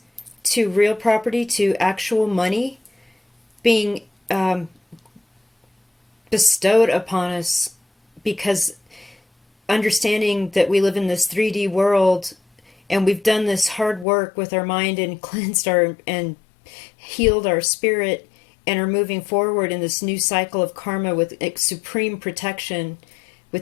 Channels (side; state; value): right; drops out; at 14.1 s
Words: to real property to actual money being bestowed upon us, because understanding that we live in this 3D world and we've done this hard work with our mind and cleansed our and healed our spirit and are moving forward in this new cycle of karma with supreme protection